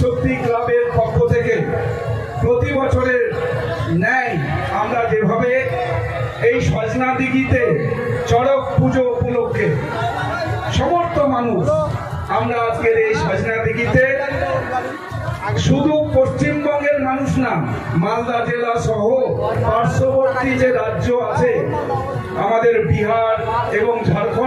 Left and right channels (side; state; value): both; identical; correlation 1.00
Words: ক্লাবের পক্ষ থেকে প্রতি বছরের ন্যায় আমরা যেভাবে এই সজনা দিঘিতে চড়ক পুজো উপলক্ষে সমস্ত মানুষ আমরা আজকের এই সজনা দিঘিতে শুধু পশ্চিমবঙ্গের মানুষ না মালদা জেলা সহ পার্শ্ববর্তী যে রাজ্য আছে আমাদের বিহার এবং